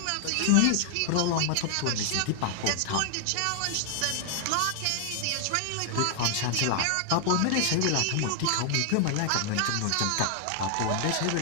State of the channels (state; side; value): different; both; correlation 0.00